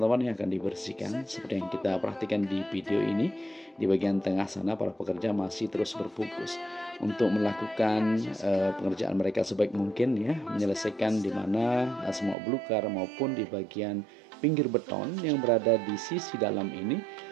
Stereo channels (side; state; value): left; drops out; at 12.4 s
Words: yang akan dibersihkan seperti yang kita perhatikan di video ini. Di bagian tengah sana para pekerja masih terus berfokus untuk melakukan pengerjaan mereka sebaik mungkin ya, menyelesaikan di mana semak belukar maupun di bagian pinggir beton yang berada di sisi dalam ini